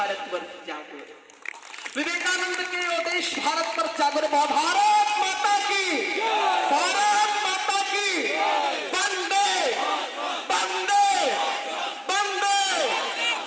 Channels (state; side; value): identical; both; correlation 1.00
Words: वर्ष जागो रे, विवेकानंद के ओ देश भारत वर्ष जागो रे। भारत माता की, भारत माता की।